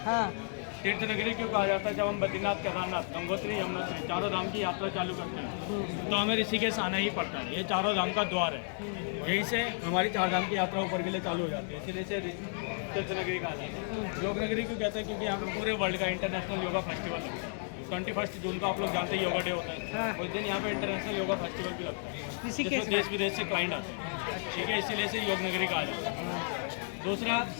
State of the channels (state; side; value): silent; right; 56 dB below the other